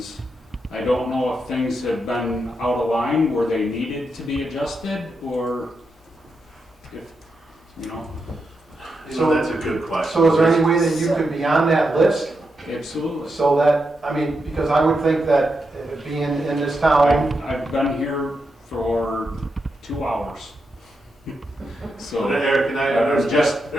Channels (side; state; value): both; normal; correlation 0.85